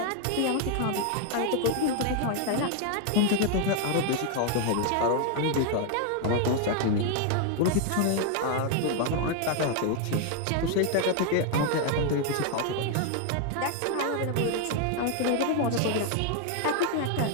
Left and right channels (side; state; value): both; different; correlation 0.00